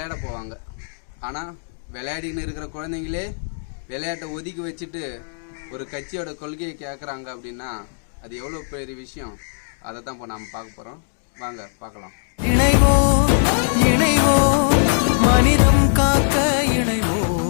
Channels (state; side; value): silent; right; 65 dB below the other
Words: போவாங்க. ஆனால் விளையாடின்னு இருக்கிற குழந்தைங்களே விளையாட்டை ஒதுக்கி வச்சுட்டு ஒரு கட்சியோட கொள்கையை கேட்குறாங்க அப்படின்னா அது எவ்வளோ பெரிய விஷயம். அதை தான் இப்போ நாம் பார்க்க போகிறோம். வாங்க பார்க்கலாம். மனிதம் காக்க இணைவோ.